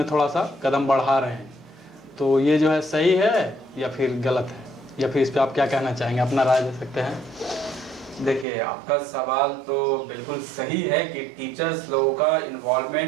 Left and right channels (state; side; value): drops out; left; at 8.5 s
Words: थोड़ा सा कदम बढ़ा रहे हैं। तो ये जो है सही है या फिर गलत है, या फिर इस पर आप क्या कहना चाहेंगे, अपना राय दे सकते हैं। देखिए, आपका सवाल तो बिल्कुल सही है कि टीचर्स लोगों का